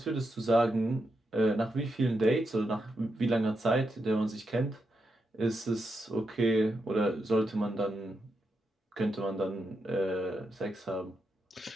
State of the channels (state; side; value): normal; both; correlation 0.84